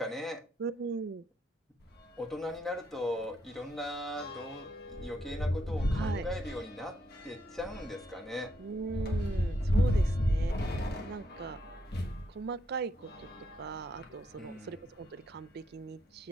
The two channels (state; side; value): normal; both; correlation 0.77